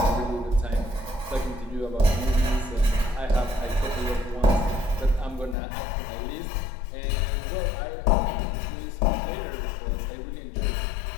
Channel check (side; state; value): right; drops out; at 5.6 s